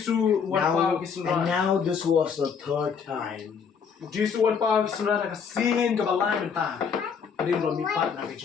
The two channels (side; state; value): right; quieter; 6.5 dB